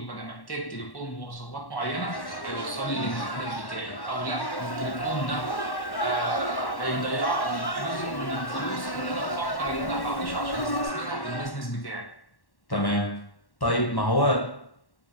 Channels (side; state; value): right; late; 1.1 ms